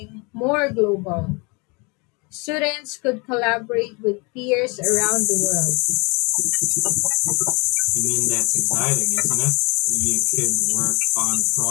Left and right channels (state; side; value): quieter; right; 29.7 dB